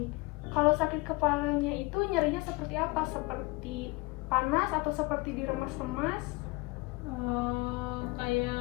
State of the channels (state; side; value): quieter; right; 24.7 dB